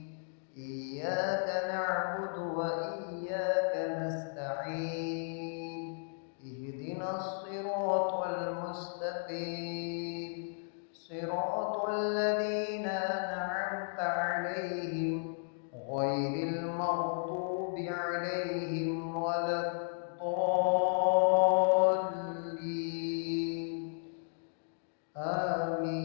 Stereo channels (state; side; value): silent; right; digital silence